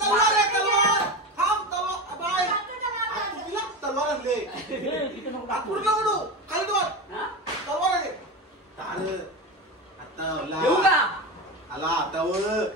तलवार आणले. देऊ का? आला आता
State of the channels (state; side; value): normal; both; correlation 0.22